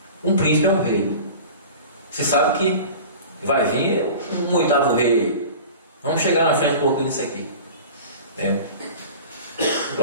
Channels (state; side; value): inverted; both; correlation -0.38